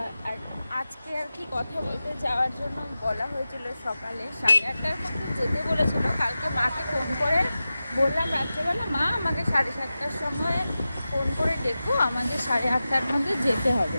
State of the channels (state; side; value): inverted; both; correlation -0.94